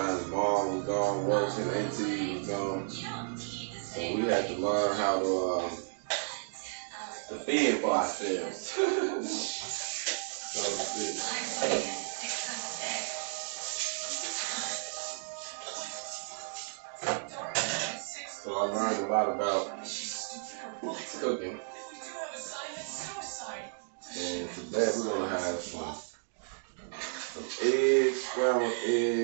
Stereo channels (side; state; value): left; silent; digital silence